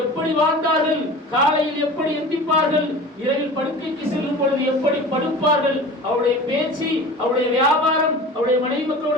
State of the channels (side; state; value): both; normal; correlation 0.37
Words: எப்படி வாழ்ந்தார்கள், காலையில் எப்படி எந்திப்பார்கள், இரவில் படுக்கைக்கு செல்லும் பொழுது எப்படி படுப்பார்கள், அவருடைய பேச்சு, அவருடைய வியாபாரம், அவருடைய மனைவி